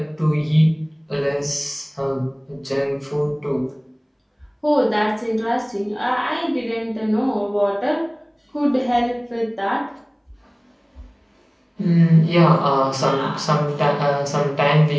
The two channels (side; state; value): both; identical; correlation 1.00